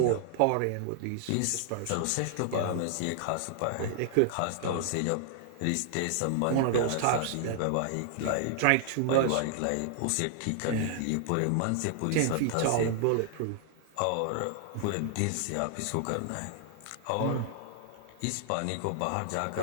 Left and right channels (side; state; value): both; different; correlation 0.00